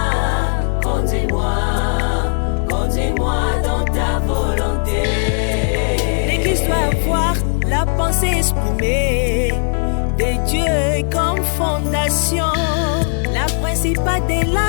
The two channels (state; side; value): silent; right; digital silence